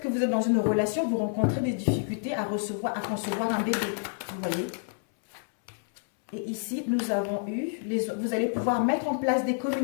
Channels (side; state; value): right; silent; 59 dB below the other